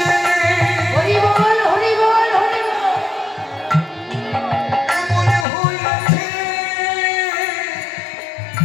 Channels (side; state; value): right; drops out; at 5.5 s